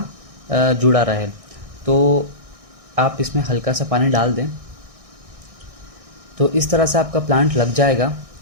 जुड़ा रहे। तो आप इसमें हल्का सा पानी डाल दें। तो इस तरह से आपका प्लांट लग जाएगा।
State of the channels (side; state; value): left; late; 1.6 ms